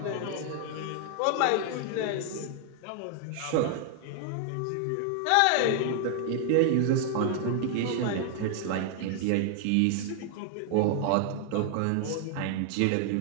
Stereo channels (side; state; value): both; different; correlation 0.00